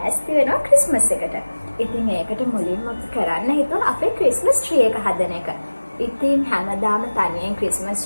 වෙනවා ක්‍රිස්මස් එකට. ඉතින් ඒකට මුලින්ම කරන්න හිතුවා අපේ ක්‍රිස්මස් ට්‍රී එක හදන එක. ඉතින් හැමදාම තනියෙන්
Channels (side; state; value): both; inverted; correlation -1.00